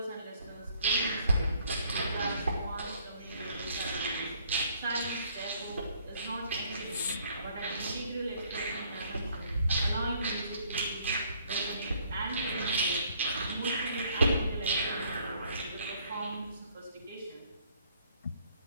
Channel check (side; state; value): both; inverted; correlation -0.63